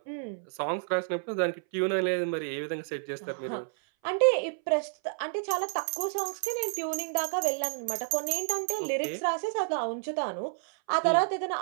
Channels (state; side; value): silent; left; 58 dB below the other